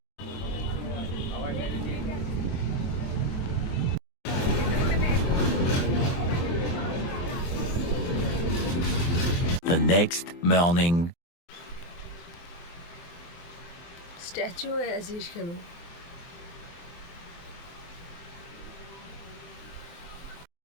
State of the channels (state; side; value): late; right; 23 ms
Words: The next morning. স্ট্যাচু হয়ে আছিস কেন?